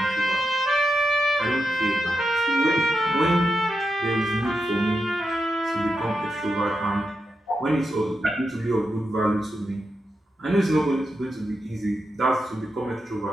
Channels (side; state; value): both; normal; correlation 0.87